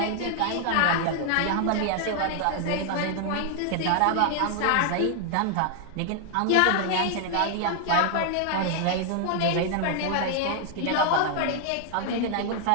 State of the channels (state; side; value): different; both; correlation 0.00